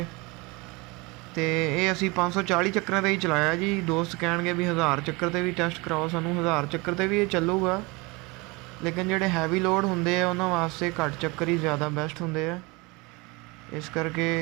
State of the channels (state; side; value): quieter; left; 25.8 dB